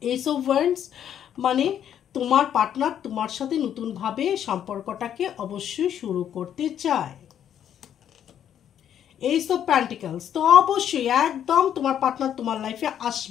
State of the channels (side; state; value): right; quieter; 9.7 dB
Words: ওয়ান্ডস মানে তোমার পার্টনার তোমার সাথে নতুনভাবে সম্পর্কটাকে অবশ্যই শুরু করতে চায়। এইস অফ পেন্টিকলস, তো অবশ্যই একদম তোমার পার্টনার তোমার লাইফে